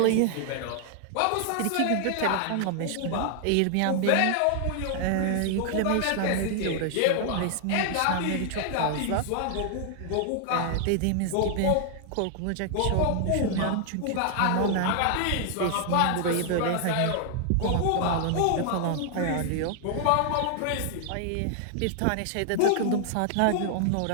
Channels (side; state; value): both; different; correlation 0.00